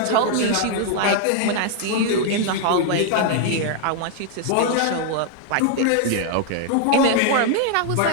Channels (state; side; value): different; both; correlation 0.00